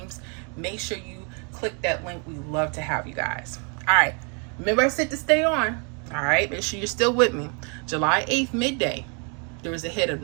Make sure you click that link. We love to have you guys. All right. Remember I said to stay on. All right. Make sure you're still with me. July 8th, midday, there was a hit of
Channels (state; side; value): quieter; left; 36.7 dB